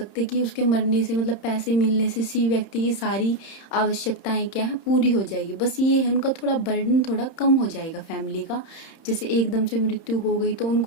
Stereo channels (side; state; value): right; late; 31 ms